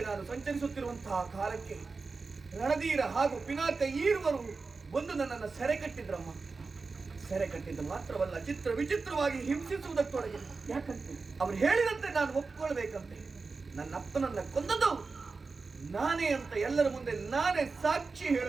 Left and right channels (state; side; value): quieter; left; 4.2 dB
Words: ನಾನು ಸಂಚರಿಸುತ್ತಿರುವಂತಹ ಕಾಲಕ್ಕೆ ರಣಧೀರ ಹಾಗೂ ಪಿನಾಕ ಈರುವರು ಬಂದು ನನ್ನನ್ನು ಸೆರೆ ಕಟ್ಟಿದ್ರಮ್ಮ. ಸೆರೆ ಕಟ್ಟಿದ್ದು ಮಾತ್ರವಲ್ಲ, ಚಿತ್ರ ವಿಚಿತ್ರವಾಗಿ ಹಿಂಸಿಸುವುದಕ್ಕೊಳಗೆ. ಯಾಕಂತೆ ಅವ್ರು ಹೇಳಿದಂತೆ ನಾನು ಒಪ್ಕೊಳ್ಬೇಕಂತೆ. ನನ್ನ ಅಪ್ಪನನ್ನ ಕೊಂದದ್ದು ನಾನೇ ಅಂತ ಎಲ್ಲರ ಮುಂದೆ ನಾನೇ ಸಾಕ್ಷಿ